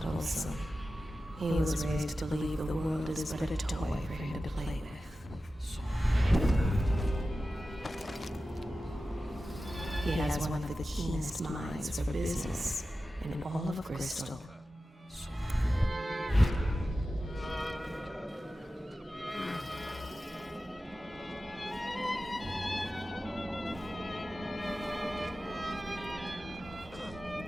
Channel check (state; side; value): normal; both; correlation 0.94